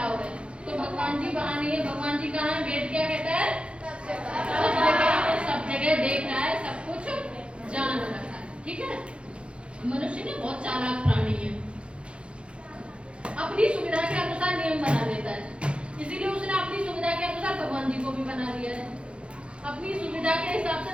है। तो भगवान जी वहाँ नहीं है, भगवान जी कहाँ है, वेद क्या कहता है, सब जगह देख रहा है, सब कुछ जान रहा है। ठीक है, मनुष्य ने बहुत चालाक प्राणी है, अपनी सुविधा के अनुसार नियम बना देता है, इसीलिए उसने अपनी सुविधा के अनुसार भगवान जी को भी बना दिया है। अपनी सुविधा के हिसाब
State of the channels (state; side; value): late; left; 0.058 ms